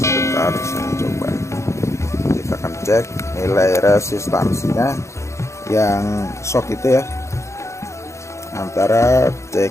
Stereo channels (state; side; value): late; right; 0.14 ms